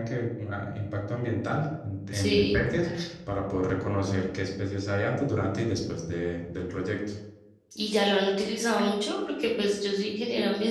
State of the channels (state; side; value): identical; both; correlation 1.00